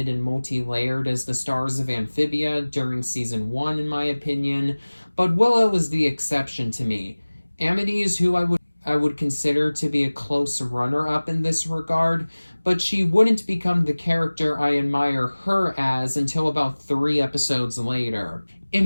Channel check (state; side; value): inverted; both; correlation -1.00